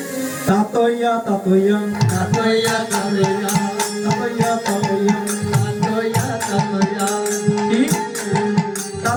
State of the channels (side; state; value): both; identical; correlation 1.00